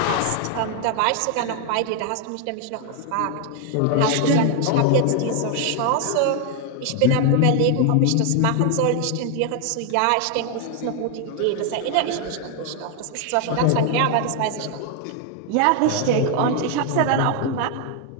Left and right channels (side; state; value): both; different; correlation 0.00